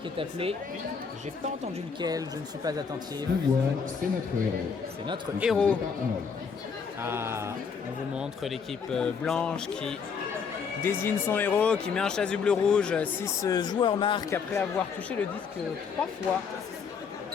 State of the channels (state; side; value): quieter; right; 6.0 dB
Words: qui est appelé. J'ai pas entendu lequel, je ne suis pas attentif. Pouvoir, c'est notre héros. C'est notre héros. Par Arnold. Ah, on vous montre l'équipe blanche qui désigne son héros, qui met un chasuble rouge. Si ce joueur marque après avoir touché le disque 3 fois,